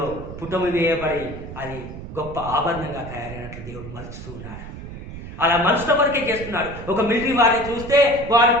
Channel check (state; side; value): noise; right; rumble, 11 dB below the sound